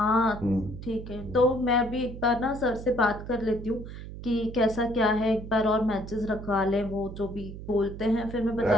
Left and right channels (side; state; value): right; noise; hum, 11 dB below the sound